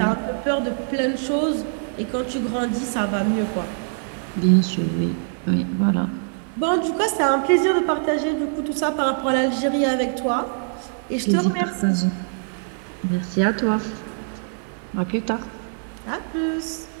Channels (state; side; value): silent; left; digital silence